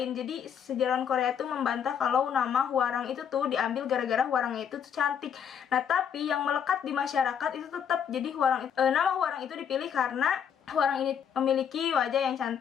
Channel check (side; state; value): right; quieter; 8.0 dB